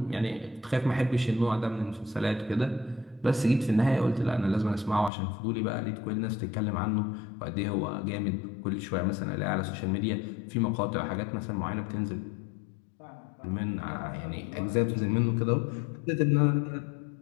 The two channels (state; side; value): drops out; right; at 5.1 s